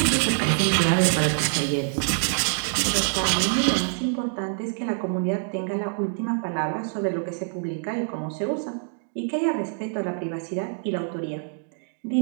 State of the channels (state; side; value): silent; left; digital silence